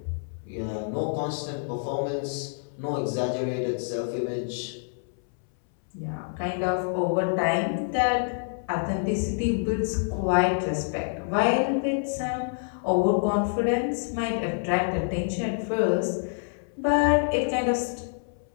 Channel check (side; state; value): right; silent; 60 dB below the other